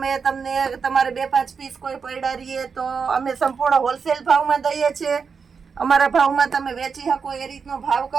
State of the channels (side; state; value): left; quieter; 5.7 dB